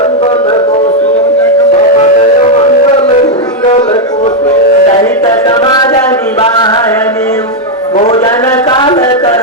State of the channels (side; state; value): both; normal; correlation 0.00